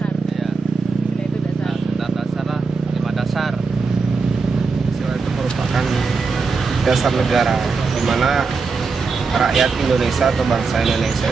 Iya. Sila itu dasar. Dasar lah, 5 dasar. Sila itu merupakan dasar negara, di mana rakyat Indonesia atau bangsa Indonesia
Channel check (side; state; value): left; quieter; 4.6 dB